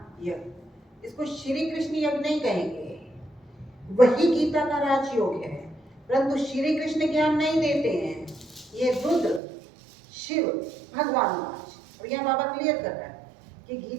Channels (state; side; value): drops out; left; at 9.4 s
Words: यज्ञ। इसको श्री कृष्ण यज्ञ नहीं कहेंगे, वही गीता का राजयोग है, परंतु श्री कृष्ण ज्ञान नहीं देते हैं। ये रुद्र शिव भगवान राज। और यहाँ बाबा क्लियर कर रहा है कि